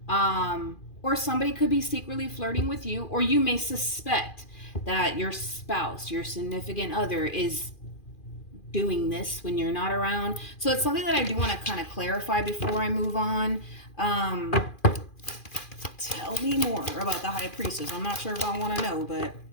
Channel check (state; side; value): late; right; 2.4 ms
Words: or somebody could be secretly flirting with you, or you may suspect that your spouse, your significant other, is doing this when you're not around. So it's something that I do want to kind of clarify before I move on. Tell me more about the High Priestess. I'm not sure if I want to know, but